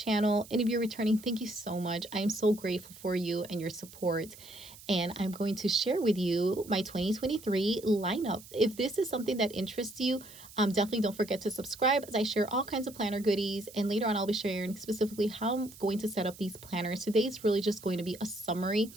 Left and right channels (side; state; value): right; noise; hiss, 19 dB below the sound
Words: And if you're returning, thank you so much. I am so grateful for you and your support. And I'm going to share with you my 2023 lineup. If this is something that interests you, definitely don't forget to subscribe as I share all kinds of planner goodies. And later on, I'll be sharing specifically how I'm going to set up these planners. Today is really just going to be a summary